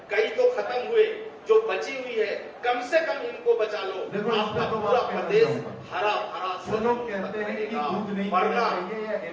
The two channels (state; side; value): identical; both; correlation 1.00